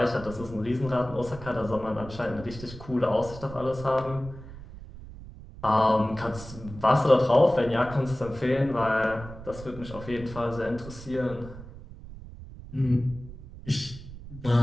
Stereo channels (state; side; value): noise; right; rumble, 14 dB below the sound